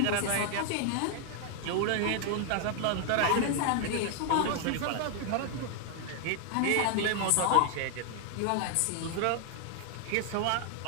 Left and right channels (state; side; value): different; both; correlation 0.00